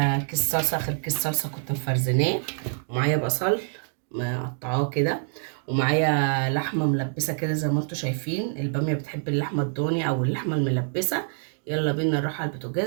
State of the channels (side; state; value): left; silent; 61 dB below the other